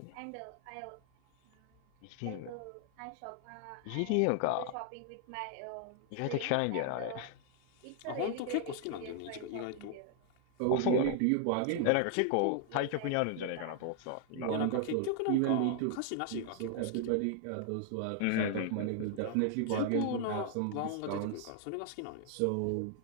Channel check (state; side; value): different; both; correlation 0.00